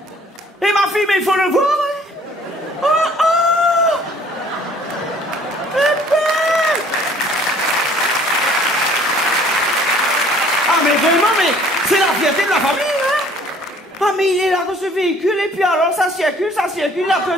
Et ma fille, mais il faut le voir. Oh, oh! Ah, mais vraiment, mais c'est la fierté de la famille, hein? Ah, mais il est là dans ce véhicule, et puis alors, ça circule, il a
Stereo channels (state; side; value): normal; both; correlation 0.55